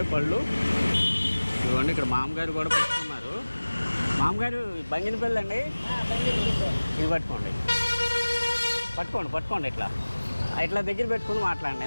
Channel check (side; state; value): both; inverted; correlation -1.00